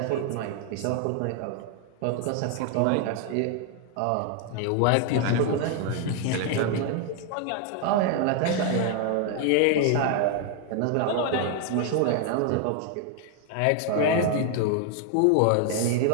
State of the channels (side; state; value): both; different; correlation 0.00